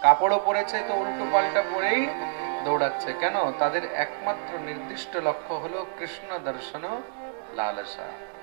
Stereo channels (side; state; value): left; silent; digital silence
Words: কাপড়ও পরেছে তো উল্টো পাল্টা পরেই দৌড়াচ্ছে। কেন? তাদের একমাত্র নির্দিষ্ট লক্ষ্য হলো কৃষ্ণ দর্শন লালসা,